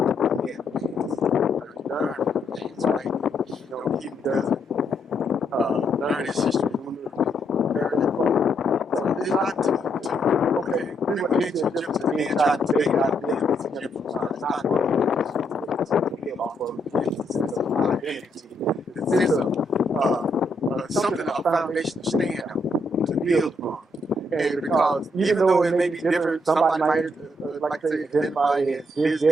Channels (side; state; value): both; normal; correlation 0.76